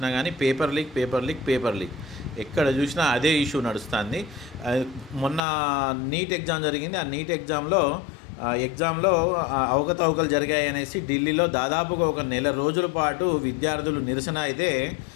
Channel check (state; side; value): drops out; right; at 5.4 s